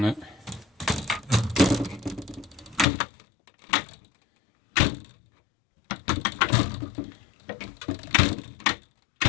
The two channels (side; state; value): right; drops out; at 2.9 s